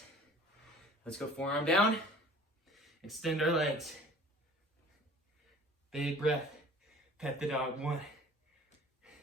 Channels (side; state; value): both; normal; correlation 0.48